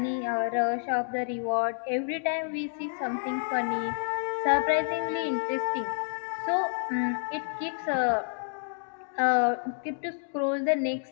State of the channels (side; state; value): right; silent; digital silence